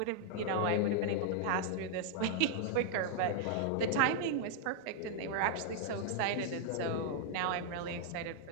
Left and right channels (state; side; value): different; both; correlation -0.01